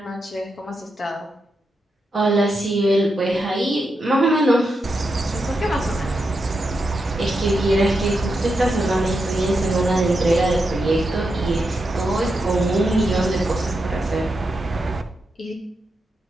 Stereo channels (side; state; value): both; normal; correlation 0.86